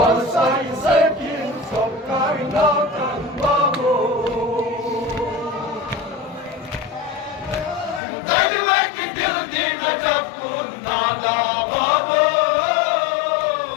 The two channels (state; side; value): drops out; right; at 8.0 s